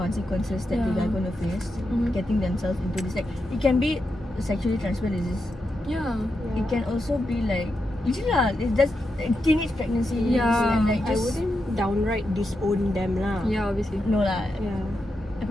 that they are going to face, getting themselves into this, like it can be sexually transmitted disease. Yeah. It can also be like it's just teenage pregnancies. Yeah. And like I just, wouldn't downright disown them lah. Yeah, obviously. no lah. Yeah. I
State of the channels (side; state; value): both; normal; correlation 0.86